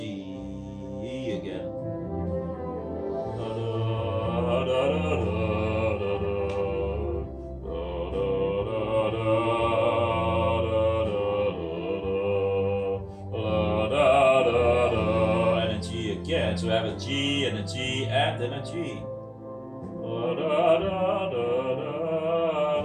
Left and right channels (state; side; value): identical; both; correlation 1.00